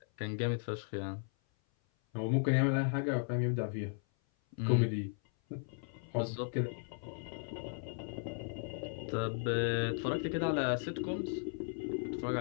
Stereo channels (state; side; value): silent; right; 54 dB below the other